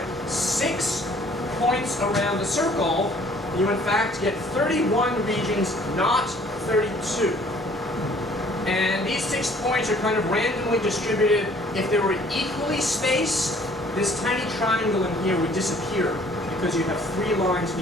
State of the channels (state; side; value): normal; both; correlation 0.57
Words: 6 points around the circle, you in fact get 31 regions, not 32. And these 6 points are kind of randomly distributed. If they were equally spaced, this tiny triangle in here would disappear because you have 3 lines